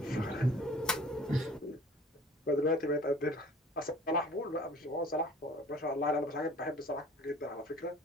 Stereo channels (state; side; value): normal; both; correlation 0.48